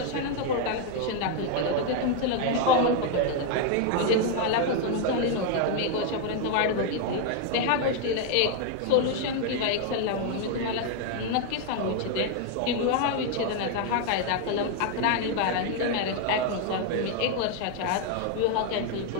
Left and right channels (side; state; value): both; different; correlation 0.00